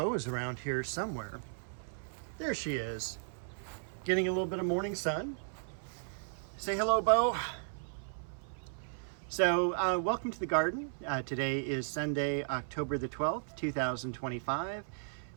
is around here somewhere. There she is, getting a little bit of morning sun. Say hello, Bo. So, welcome to the garden. Today is Sunday, October the 12th, 2025.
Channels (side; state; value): left; silent; 54 dB below the other